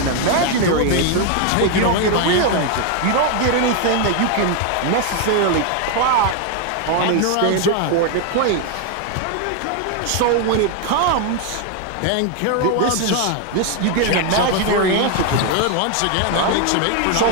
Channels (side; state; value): both; different; correlation 0.01